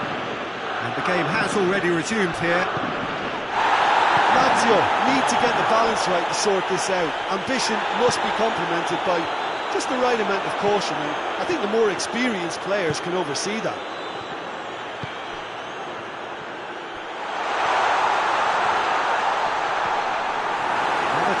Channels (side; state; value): both; identical; correlation 1.00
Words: the game has already resumed here. Lazio need to get the balance right to sort this out. Ambition must be complemented by just the right amount of caution, and I think the more experienced players can oversee that. Another